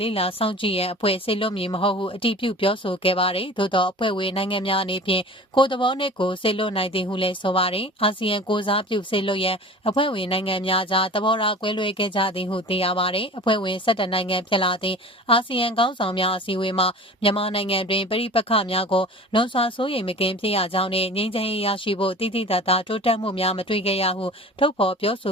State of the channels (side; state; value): both; normal; correlation 0.40